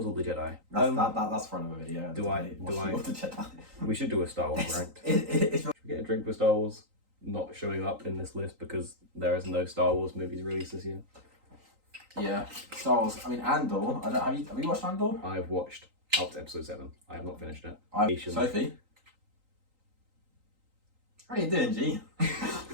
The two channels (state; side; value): late; left; 3.8 ms